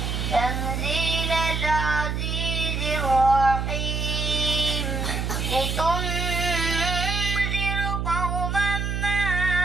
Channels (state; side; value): noise; right; hum, 1 dB below the sound